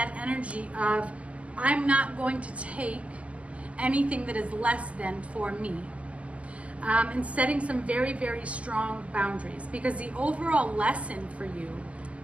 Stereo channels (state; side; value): late; left; 0.065 ms